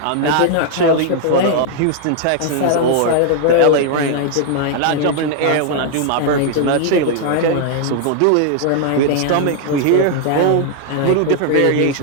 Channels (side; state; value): both; different; correlation 0.00